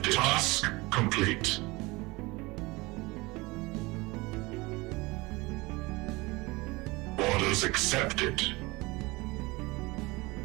Task complete. Orders accepted.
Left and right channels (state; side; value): quieter; left; 23.1 dB